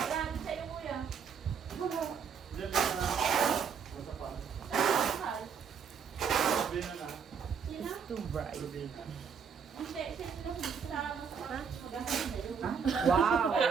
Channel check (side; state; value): left; quieter; 6.7 dB